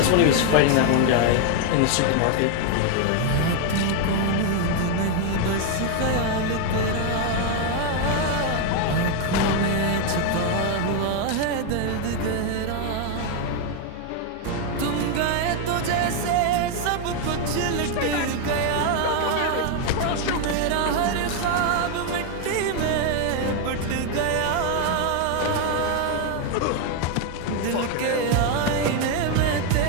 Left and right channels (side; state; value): both; different; correlation 0.01